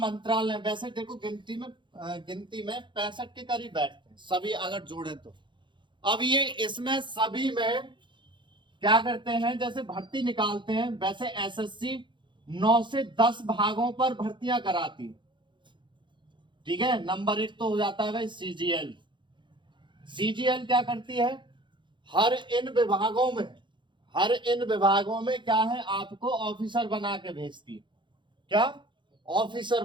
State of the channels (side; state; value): left; late; 0.23 ms